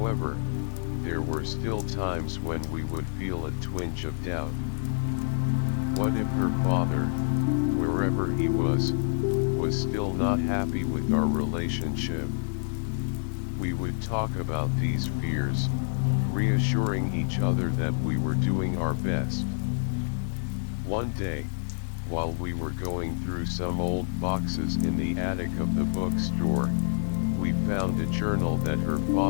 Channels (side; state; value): right; silent; 60 dB below the other